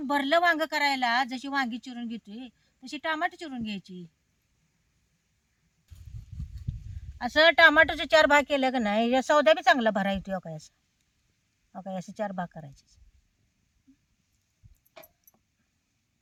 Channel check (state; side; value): identical; both; correlation 1.00